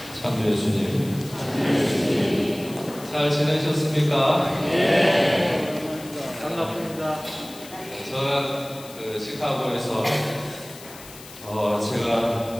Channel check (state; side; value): noise; left; hiss, 18 dB below the sound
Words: 참 예수님, 잘 지내셨습니까? 네. 반갑습니다. 저는 시카고에서